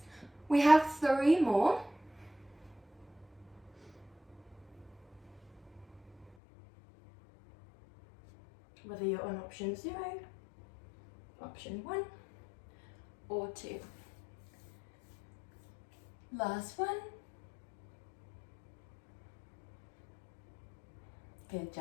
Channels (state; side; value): drops out; right; at 6.4 s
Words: We have 3 more. Whether you're on option 0, option 1, or 2. Last one. Good